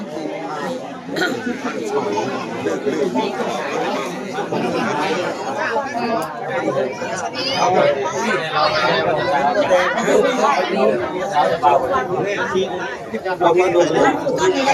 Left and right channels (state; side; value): identical; both; correlation 1.00